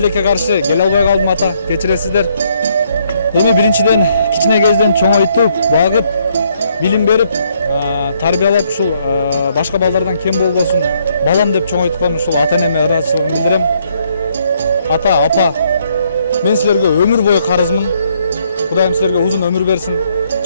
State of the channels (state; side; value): inverted; both; correlation -0.70